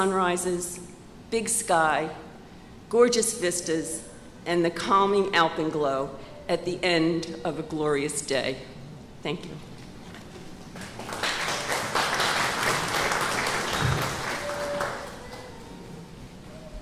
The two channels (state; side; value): identical; both; correlation 1.00